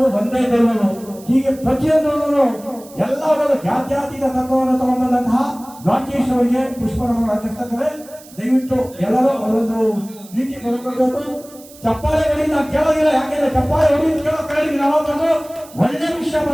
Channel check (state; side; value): noise; right; hiss, 21 dB below the sound